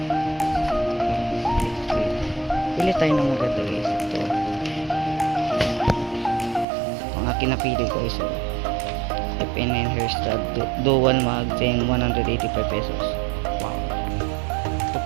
Pili tayo ng maganda guys. Ito ang aking napili guys. So FNN hairstyle dual mag 185 pesos. Wow. Ito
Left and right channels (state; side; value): drops out; left; at 6.7 s